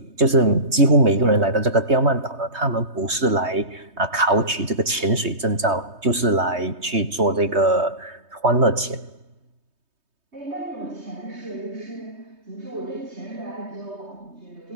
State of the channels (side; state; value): left; late; 3.2 ms